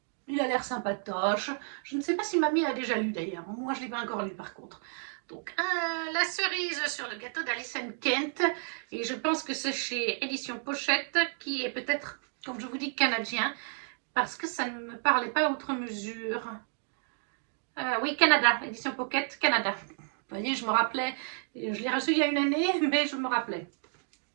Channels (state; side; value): silent; left; 57 dB below the other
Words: Il a l'air sympatoche. Je ne sais pas si mamie a déjà lu d'ailleurs. Moi, je ne l'ai pas encore lu par contre. Donc, la cerise sur le gâteau d'Alison Kent. Et je pense que c'est chez Édition Pochette, qui est peut-être, comme je vous dis, canadien. Parce que ça ne me parlait pas outre mesure. Oui, Canada, Édition Pocket, Canada. Vous voyez, je me rappelais. Je l'ai reçu il y a une année, mais je me rappelais.